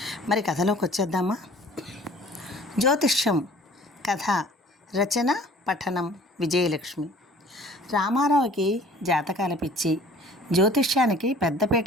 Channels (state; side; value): normal; both; correlation 0.50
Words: మరి కథలోకి వచ్చేద్దామా? జ్యోతిష్యం కథ రచన పఠనం విజయలక్ష్మి. రామారావుకి జాతకాల పిచ్చి, జ్యోతిష్యానికి